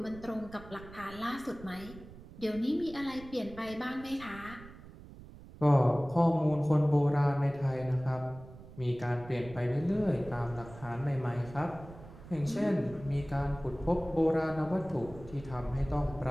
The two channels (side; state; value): right; noise; rumble, 17 dB below the sound